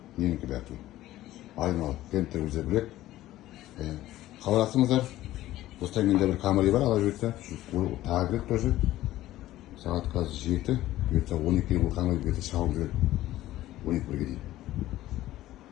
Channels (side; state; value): right; quieter; 15.0 dB